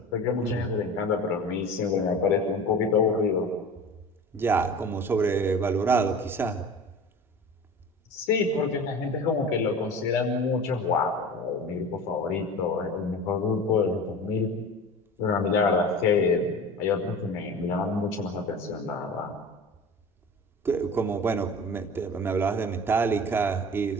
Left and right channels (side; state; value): both; normal; correlation 0.36